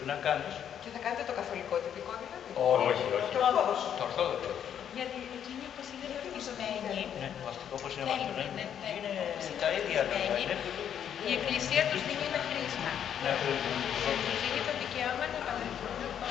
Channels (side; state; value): right; quieter; 9.1 dB